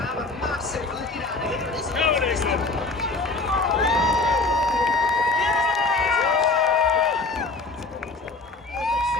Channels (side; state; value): right; quieter; 3.4 dB